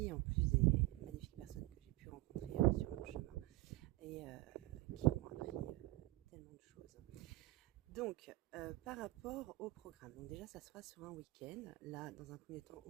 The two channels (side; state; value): left; quieter; 19.4 dB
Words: en plus des magnifiques personnes que j'ai pu rencontrer sur mon chemin et qui m'ont appris tellement de choses. Donc, par rapport au programme, donc déjà ça sera sur un week-end, là dans un premier temps